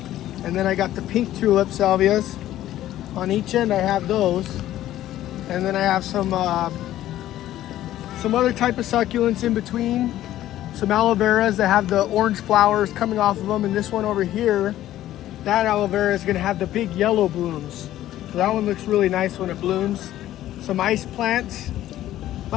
And then I got the pink tulip salvias. On each end I have those. And then I have some other type of succulents in between. Some aloe veras that have the orange flowers coming off of them. And this one over here, that aloe vera is going to have the big yellow blooms. So that one looks really nice when it blooms. Some ice plants.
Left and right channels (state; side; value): quieter; right; 13.5 dB